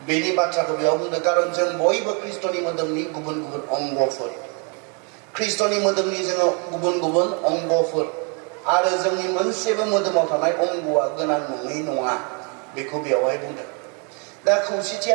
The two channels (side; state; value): left; quieter; 35.5 dB